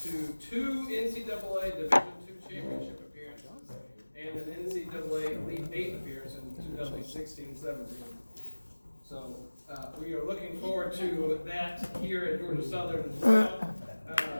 to 2 NCAA Division II championship appearances and an NCAA Elite 8 appearance in 2016-17. So we are looking forward to that here at Georgia Southern as well.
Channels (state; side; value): inverted; both; correlation -1.00